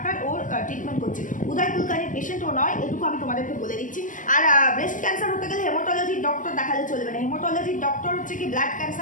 ওর ট্রিটমেন্ট করছে। উদয় কুলকার্নির পেশেন্ট ও নয়, এটুকু আমি তোমাদেরকে বলে দিচ্ছি। আর ব্রেস্ট ক্যান্সার হতে গেলে হেমাটোলজির ডক্টর দেখালে চলবে না। হেমাটোলজির ডক্টর হচ্ছে কি ব্লাড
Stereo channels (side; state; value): right; late; 0.38 ms